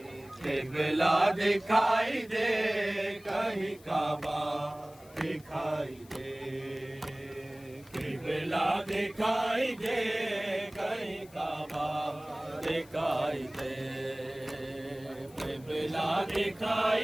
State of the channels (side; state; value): left; noise; hiss, 25 dB below the sound